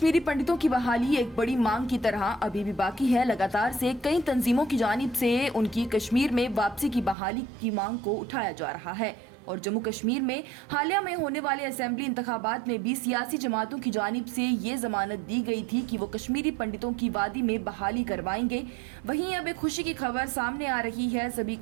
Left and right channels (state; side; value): drops out; left; at 7.2 s